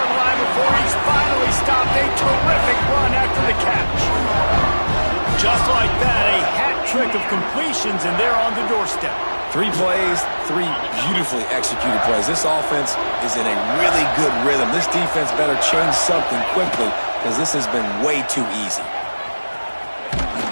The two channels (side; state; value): both; inverted; correlation -1.00